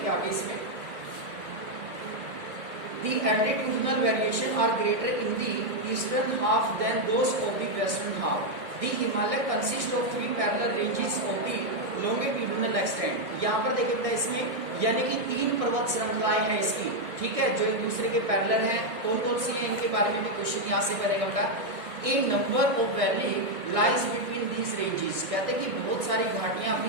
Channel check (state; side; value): late; left; 1.9 ms